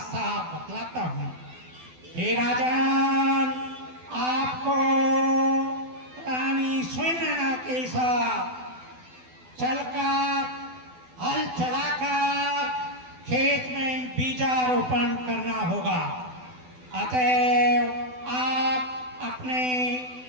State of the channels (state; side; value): late; left; 12 ms